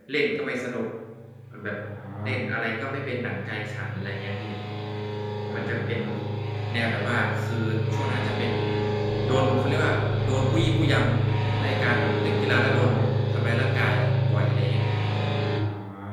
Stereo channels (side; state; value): both; identical; correlation 1.00